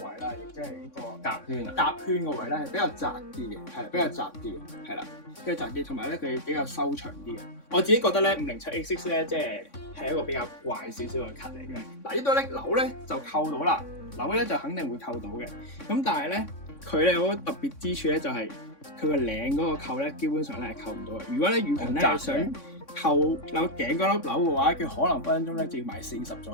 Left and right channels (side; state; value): right; late; 3.6 ms